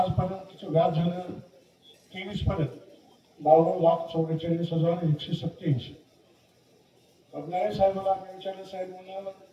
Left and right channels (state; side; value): identical; both; correlation 1.00